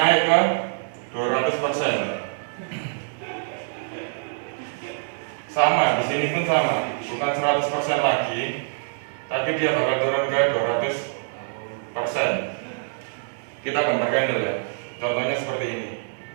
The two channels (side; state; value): left; silent; digital silence